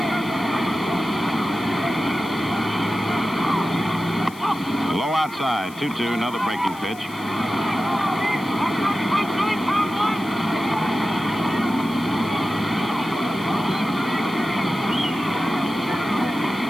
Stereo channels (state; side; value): noise; left; hiss, 20 dB below the sound